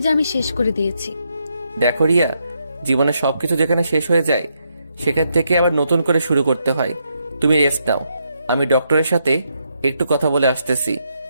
যে আমি শেষ করে দিয়েছি। দেখো রিয়া, জীবনে সবকিছু যেখানে শেষ হয়ে যায় সেখান থেকে আবার নতুন করে শুরু করতে হয়। তুমি রেস্ট নাও, আমি ডক্টরের সাথে একটু কথা বলে আসতেছি।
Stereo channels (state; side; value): inverted; both; correlation -0.79